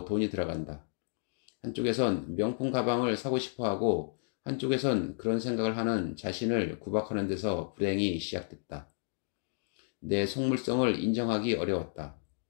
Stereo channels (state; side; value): silent; right; 56 dB below the other